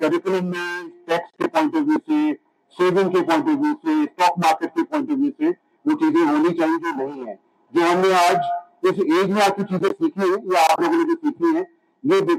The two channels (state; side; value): identical; both; correlation 1.00